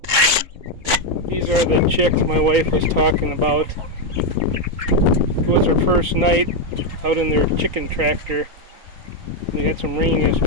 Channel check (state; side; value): late; left; 3.9 ms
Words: These are the chicks my wife was talking about. It was her first night out in their chicken tractor. They had some rain